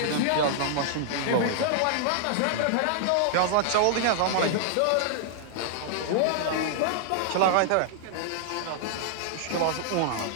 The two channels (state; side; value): different; both; correlation -0.01